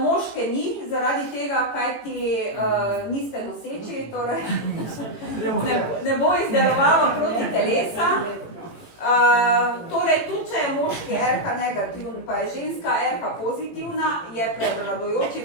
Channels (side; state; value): right; late; 18 ms